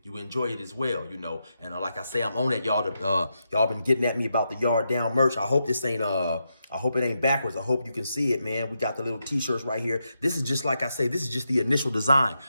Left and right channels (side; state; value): both; inverted; correlation -0.85